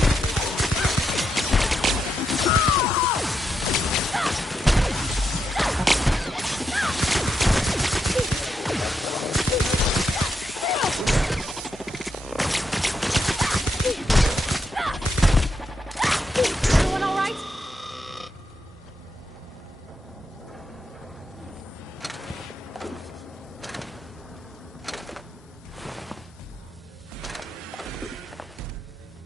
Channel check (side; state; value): both; normal; correlation 0.83